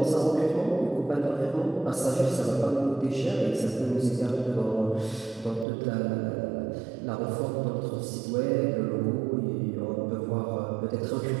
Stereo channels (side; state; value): left; drops out; at 5.7 s